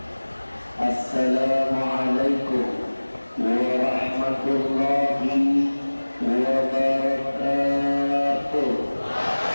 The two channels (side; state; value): both; inverted; correlation -1.00